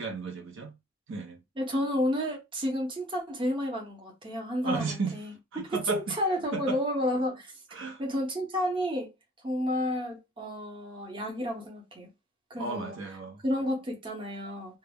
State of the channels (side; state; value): both; normal; correlation 0.55